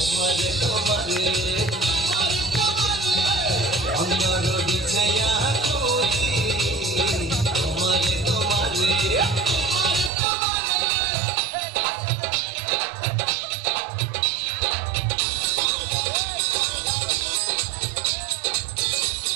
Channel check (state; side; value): drops out; left; at 10.1 s